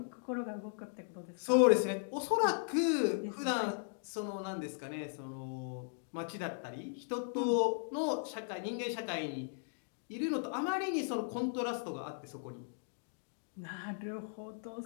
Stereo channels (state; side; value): silent; right; digital silence